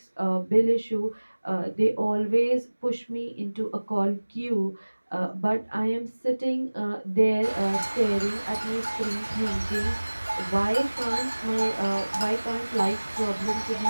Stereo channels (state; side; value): inverted; both; correlation -1.00